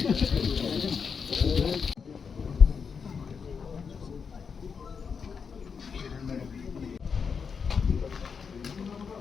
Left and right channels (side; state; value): right; quieter; 6.0 dB